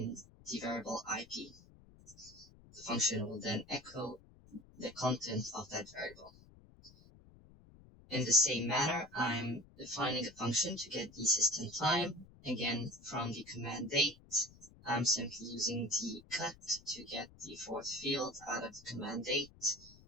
the variable IP. The function will then echo the content of that variable. In the same manner, I'm defining a function to get the system time. Again, from the command date, I'm simply using the cut to get the fourth field out of the command date.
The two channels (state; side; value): noise; left; rumble, 23 dB below the sound